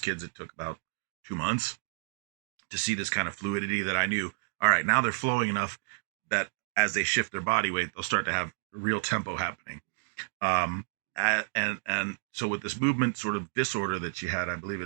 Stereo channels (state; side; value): silent; left; digital silence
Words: kids it took about 2 months to see this kind of fluidity that I knew, all right, now they're flowing enough that as they shift their body weight, they'll start to have real tempo happening. And so with this movement sort of disorder that she had, I believe